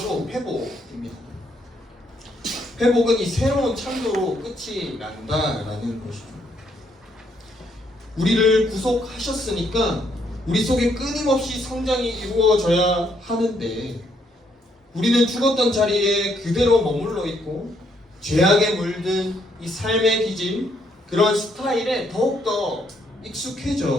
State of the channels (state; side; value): normal; both; correlation 0.72